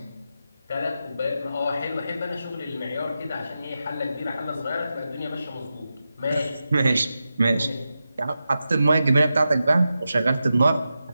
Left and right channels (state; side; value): inverted; both; correlation -0.90